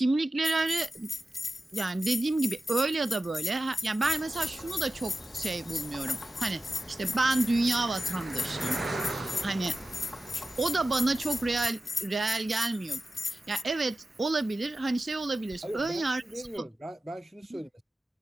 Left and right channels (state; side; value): normal; both; correlation 0.94